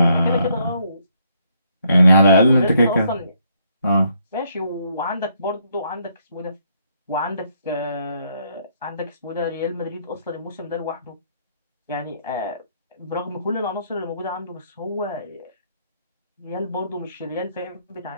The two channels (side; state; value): both; inverted; correlation -0.71